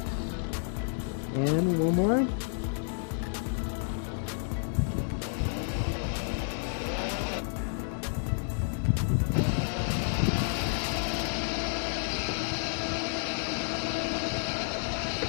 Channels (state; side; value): silent; right; digital silence